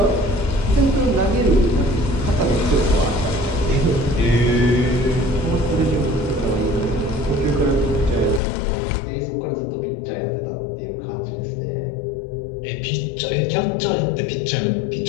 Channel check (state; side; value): drops out; right; at 8.4 s